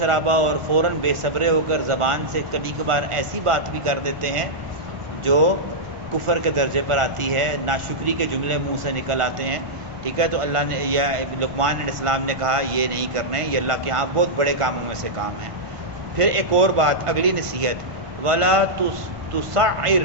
اور فوراً بے صبرے ہو کر زبان سے کبھی کبھار ایسی بات بھی کر دیتے ہیں جو کفر کے درجے پر آتی ہے، ناشکری کے جملے منہ سے نکل آتے ہیں. ٹھیک ہے. تو اللہ نے یہ لقمان علیہ السلام نے کہا یہ نہیں کرنے، یہ اللہ کے ہاں بہت بڑے کاموں میں سے کام ہے. پھر ایک اور بات، اگلی نصیحت، وَلَا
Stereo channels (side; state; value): left; late; 1.4 ms